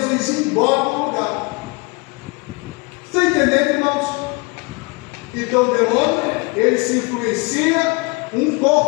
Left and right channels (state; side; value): quieter; right; 28.0 dB